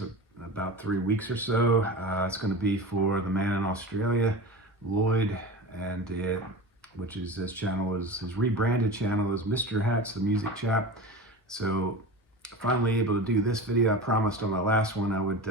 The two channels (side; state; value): both; normal; correlation 0.30